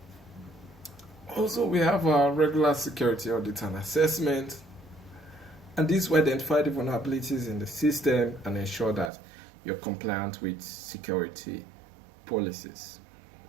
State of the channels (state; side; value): drops out; left; at 9.1 s